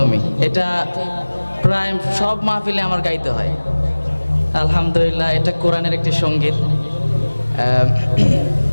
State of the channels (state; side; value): inverted; both; correlation -1.00